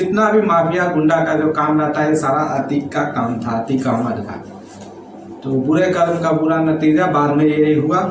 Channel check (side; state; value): both; identical; correlation 1.00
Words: भी माफिया गुंडा का जो काम रहता है, ये सारा अतीक का काम था, अतीक अहमद का। तो बुरे कर्म का बुरा नतीजा बाद में यही हुआ।